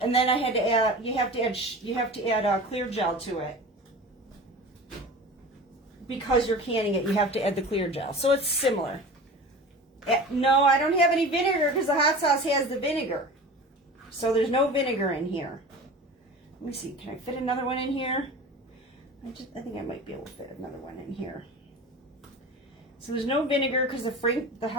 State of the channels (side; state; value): both; normal; correlation 0.36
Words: And then I had to add. You have to add clear gel to it. Because you're canning it, you have to add the clear gel. So it's similar. No, I don't have any vinegar because the hot sauce has the vinegar. So there's no vinegar in here. Let me see. Can I fit another one in here? I think I might be able to fit another one in here. So there's no vinegar because the